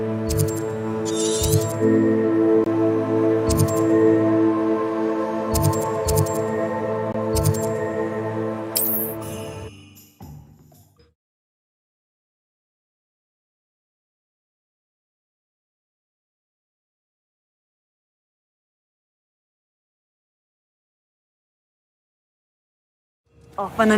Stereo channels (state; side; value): identical; both; correlation 1.00